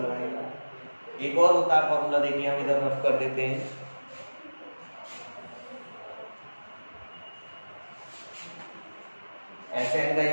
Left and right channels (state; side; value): inverted; both; correlation -1.00